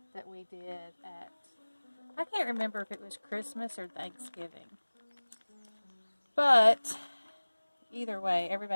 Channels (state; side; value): inverted; both; correlation -1.00